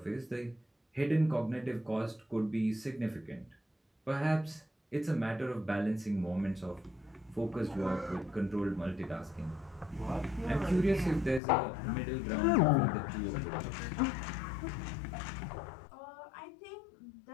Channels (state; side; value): drops out; right; at 11.4 s